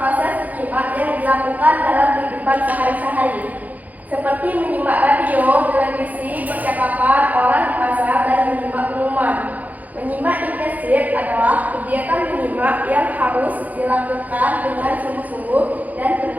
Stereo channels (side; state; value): left; late; 0.079 ms